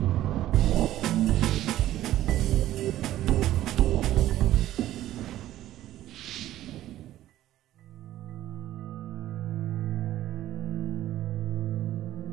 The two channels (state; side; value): quieter; left; 13.6 dB